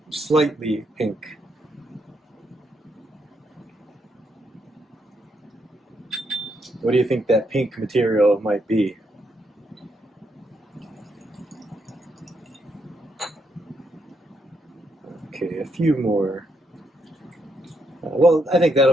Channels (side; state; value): both; normal; correlation 0.78